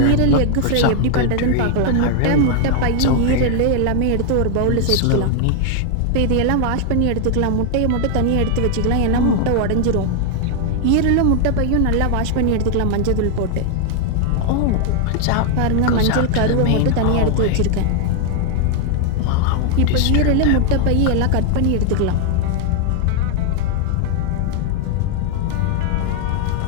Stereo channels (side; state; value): both; different; correlation 0.00